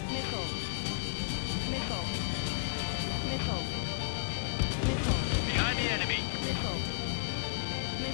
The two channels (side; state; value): right; silent; digital silence